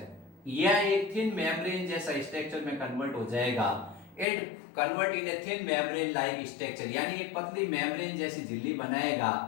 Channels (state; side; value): drops out; right; at 4.2 s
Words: या एक थिन मेम्ब्रेन जैसा स्ट्रक्चर में कन्वर्ट हो जाएगा। It convert in a thin membrane like structure, यानी एक पतली मेम्ब्रेन जैसी झिल्ली बनाएगा।